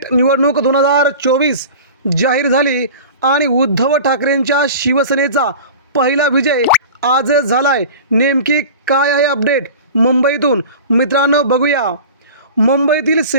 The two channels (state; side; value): inverted; both; correlation -0.37